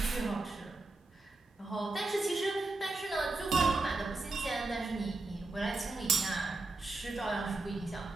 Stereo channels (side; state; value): left; quieter; 3.2 dB